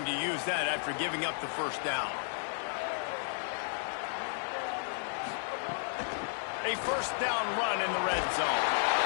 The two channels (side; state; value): right; silent; digital silence